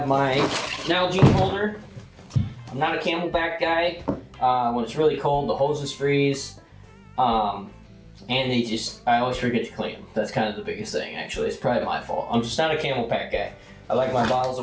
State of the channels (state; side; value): identical; both; correlation 1.00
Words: my Nalgene holder. I'm not a Camelback guy. When it's really cold, the hoses freeze. And I always forget to clean them. That's kind of the biggest thing, actually. It's probably my fault. I'm just not a Camelback guy. I like my bottles